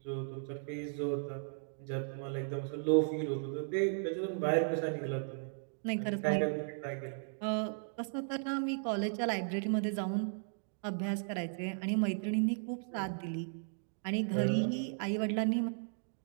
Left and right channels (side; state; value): left; silent; digital silence